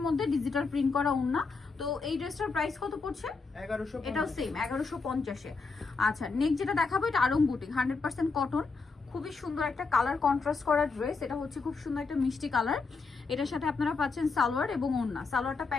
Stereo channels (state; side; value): quieter; right; 4.4 dB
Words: মধ্যে ডিজিটাল প্রিন্ট করা ওড়না। তো এই ড্রেসটার প্রাইস কত পড়ছে? 1150। এটাও সেম 1150-এ। আচ্ছা, নেক্সট যেটা দেখাবো, এটা আড়ং বুটিক, 100% কটন। খুবই সুন্দর একটা কালার কন্ট্রাস্ট করা ড্রেস। এটা হচ্ছে খুব সুন্দর একটা মিষ্টি কালার। এটার সাথে আপনারা পাচ্ছেন সালোয়ার এবং ওড়না। সালোয়ারটা